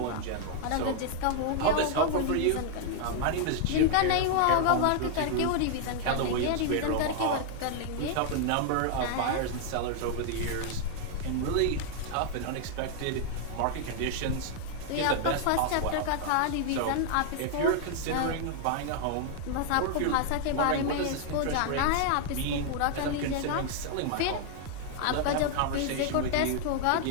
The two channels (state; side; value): different; both; correlation 0.00